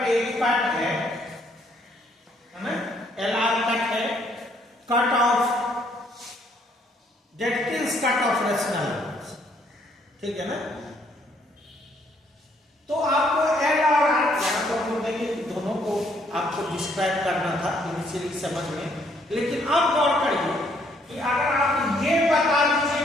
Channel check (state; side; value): normal; both; correlation 0.67